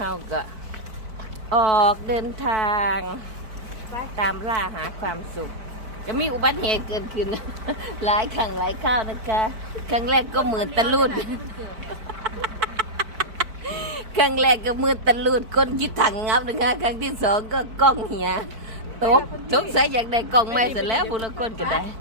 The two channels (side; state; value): left; late; 4.5 ms